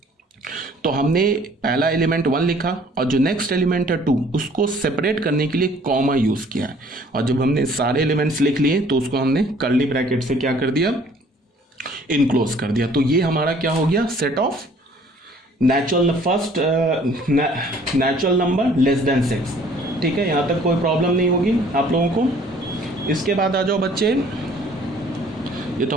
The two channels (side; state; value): both; normal; correlation 0.56